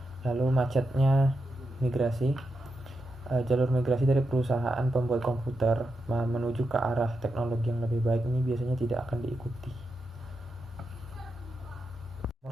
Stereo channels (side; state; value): both; normal; correlation 0.86